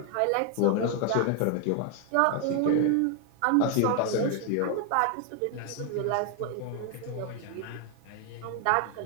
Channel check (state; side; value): different; both; correlation 0.00